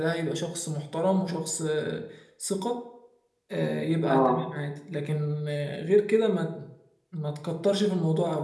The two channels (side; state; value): both; identical; correlation 1.00